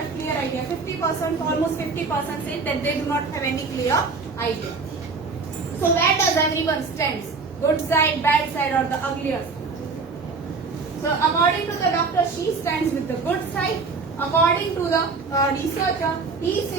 clear idea. 50%, almost 50% say that they do not have any clear idea. So where does everyone stands? Good side, bad side, or the uglier side? So according to the doctor, she stands with the good side. According to the researcher, he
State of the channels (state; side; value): quieter; left; 4.5 dB